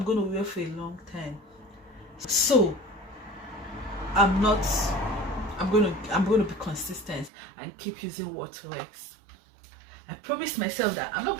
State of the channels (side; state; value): left; drops out; at 7.3 s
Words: going to wear for a long time. So I'm going to be consistent and keep using what works. I promised myself that I'm not